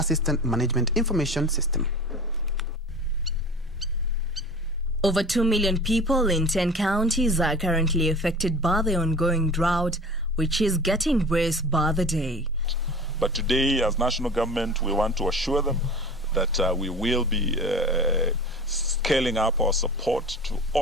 Management Information System. Over 2 million people in 10 counties are currently affected by the ongoing drought, which is getting worse by the day. But today, as national government, we want to assure them that we will be scaling up our support to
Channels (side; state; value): both; normal; correlation 0.37